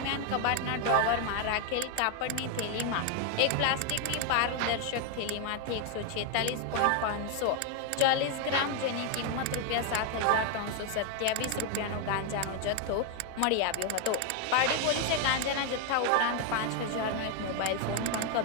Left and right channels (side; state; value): both; different; correlation 0.01